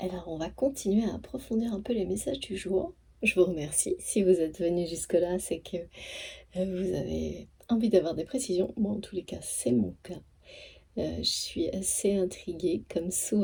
on va continuer à approfondir un peu les messages du jour. Je vous remercie. Si vous êtes venu jusque-là, c'est que vous avez envie d'avoir des précisions. Moi, en tous les cas, c'est mon cas. Je suis assez intriguée, comme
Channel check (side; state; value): both; identical; correlation 1.00